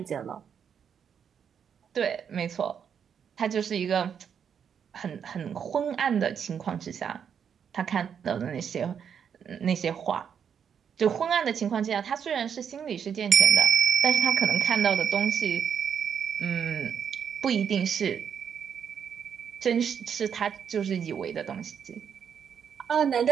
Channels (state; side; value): quieter; left; 7.7 dB